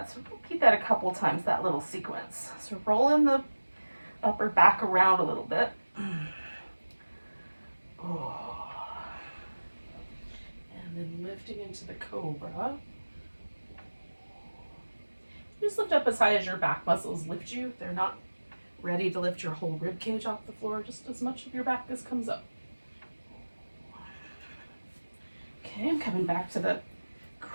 So repeat that a couple times, that little sequence. So rolling the upper back around a little bit. Oh. And then lifting into the cobra. Just lift up as high as your back muscles lift you. If they're not ready to lift your whole rib cage off the floor, just as much of your back as comes up. Okay, I'm coming back to the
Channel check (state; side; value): inverted; both; correlation -1.00